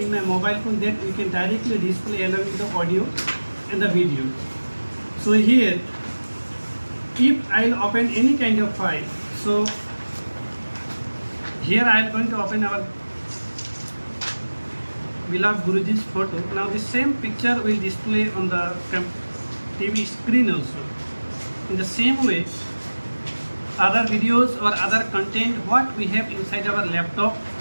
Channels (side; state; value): both; inverted; correlation -1.00